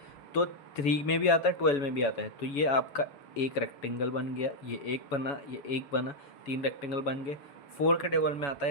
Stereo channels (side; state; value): right; late; 7.1 ms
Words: तो 3 में भी आता है 12 में भी आता है, तो ये आपका एक रेक्टेंगल बन गया, ये एक बना, ये एक बना, 3 रेक्टेंगल बन गए। 4 के टेबल में आता